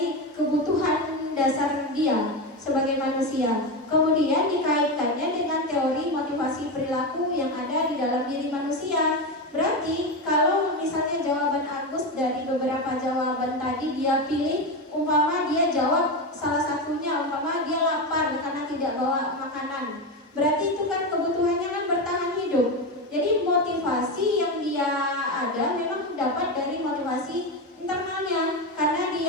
kebutuhan dasar dia sebagai manusia. Kemudian dikaitkannya dengan teori motivasi perilaku yang ada di dalam diri manusia. Berarti kalau misalnya jawaban Agus dari beberapa jawaban tadi dia pilih, umpama dia jawab salah satunya, umpama dia lapar karena tidak bawa makanan, berarti itu kan kebutuhannya kan bertahan hidup. Jadi motivasi yang dia ada memang dapat dari motivasi internalnya, karena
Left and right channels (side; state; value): both; normal; correlation 0.15